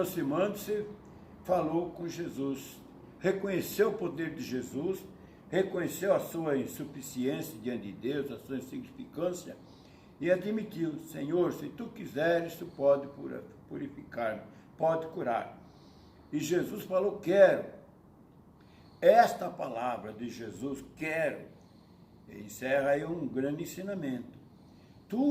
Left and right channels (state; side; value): identical; both; correlation 1.00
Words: falou com Jesus, reconheceu o poder de Jesus, reconheceu a sua insuficiência diante de Deus, a sua insignificância, e admitiu: Senhor, se tu quiseres, tu pode purificar-me, pode curar. E Jesus falou: quero. Esta palavra de Jesus, quero, encerra aí um grande ensinamento.